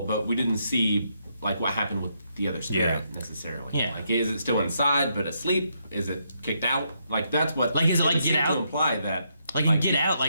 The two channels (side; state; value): both; inverted; correlation -0.77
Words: but we didn't see, like, what happened with the other spirit necessarily. Yeah. Like, is it still inside but asleep? Is it kicked out? Like, that's what. Like, is it like seemed Get to Out? imply that. Like in Get Out,